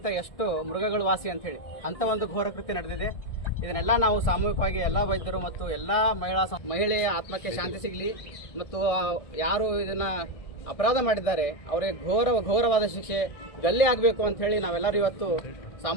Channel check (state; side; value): late; right; 1.6 ms